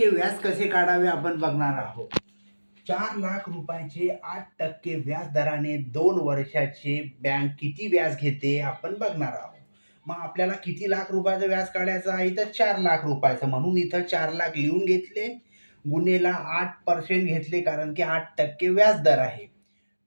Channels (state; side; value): inverted; both; correlation -1.00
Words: व्याज कसे काढावे आपण बघणार आहोत. 4,00,000 रुपयाचे 8% व्याज दराने 2 वर्षाचे बँक किती व्याज घेते आपण बघणार आहोत. मग आपल्याला किती लाख रुपयाचं व्याज काढायचं आहे, तर 4,00,000 रुपयाचं. म्हणून इथं 4,00,000 लिहून घेतले, गुन्हेला 8% घेतले, कारण की 8% व्याज दर आहे.